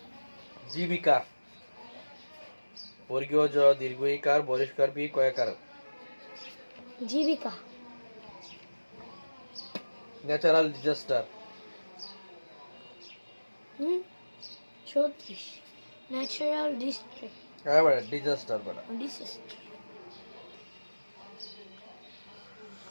জীবিকা বর্গীয় জ দীর্ঘ ইকার বরিষ্কার বি কয়াকার জীবিকা ন্যাচারাল ডিজাস্টার 34 ন্যাচারাল ডিস্ট্রিক্ট হ্যাঁ বড় ডিজাস্টার বড় ডিসাস্টার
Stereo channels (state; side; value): inverted; both; correlation -1.00